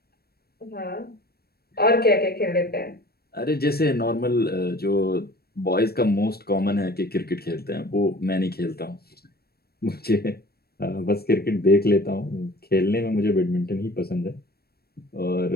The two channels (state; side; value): late; right; 0.46 ms